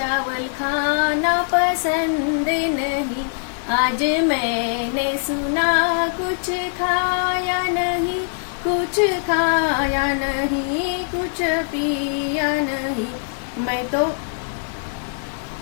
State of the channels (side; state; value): right; silent; digital silence